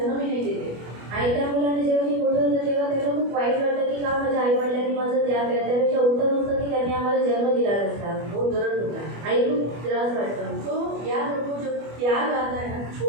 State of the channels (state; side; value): late; left; 25 ms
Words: ही नहीं देते। आणि त्या मुलाने जेव्हा ती मोठं होतं तेव्हा त्यांना खूप वाईट वाटतं की का माझ्या आई वडिलांनी माझं त्याग केला, त्यापेक्षा उत्तम होतं की त्यांनी आम्हाला जन्म दिला नसता. बहुत दर्द होता है। आणि खूप त्रास वाटतो. तो याद रखो, जब त्याग आता है ना,